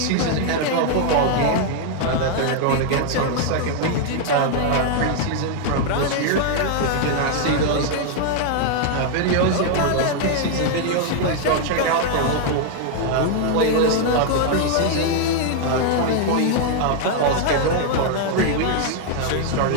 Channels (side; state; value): both; different; correlation 0.00